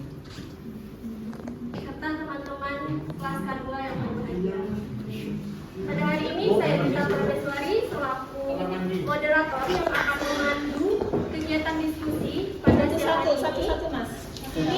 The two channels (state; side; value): identical; both; correlation 1.00